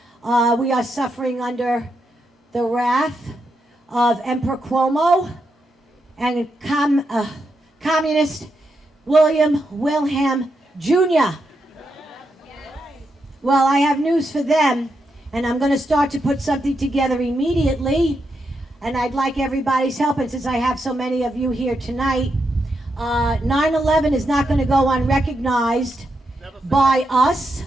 We are suffering under the wrath of Emperor Cuomo and Communist Wilhelm Jr. Well, I have news for them, and I'm going to start to put something together immediately, and I'd like everybody's help, and since I have so many of you here tonight, 9/11 is not going to go unrecognized by us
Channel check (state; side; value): normal; both; correlation 0.83